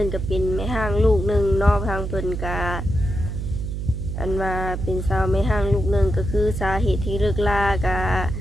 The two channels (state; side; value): noise; right; hum, 4 dB below the sound